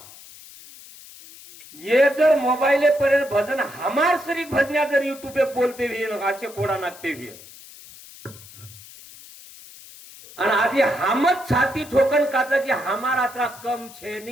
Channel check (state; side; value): noise; left; hiss, 19 dB below the sound